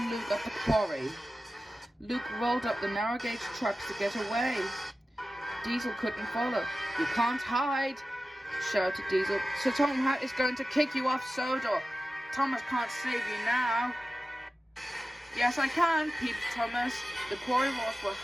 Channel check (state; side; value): normal; both; correlation 0.95